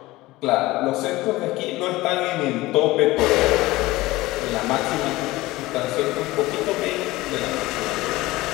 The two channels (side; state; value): right; quieter; 19.2 dB